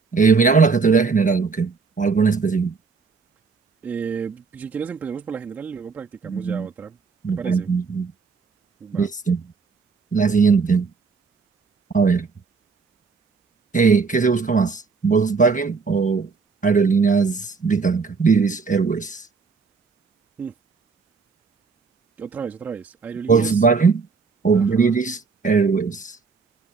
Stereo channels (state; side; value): quieter; left; 4.9 dB